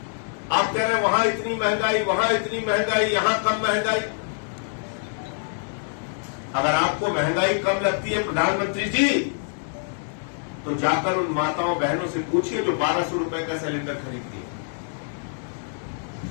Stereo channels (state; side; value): silent; right; 62 dB below the other